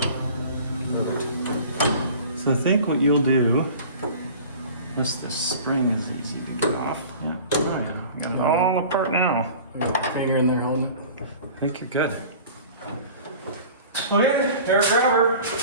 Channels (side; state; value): both; inverted; correlation -0.42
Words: So I think what you'll do, this spring is easy to get off. Yeah, right. You got it all apart now. There's a finger in there holding it. I think you're good. Okay, hair grabber.